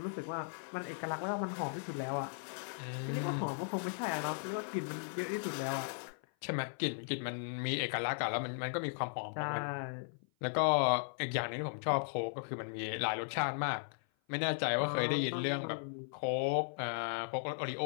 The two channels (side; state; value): right; silent; 53 dB below the other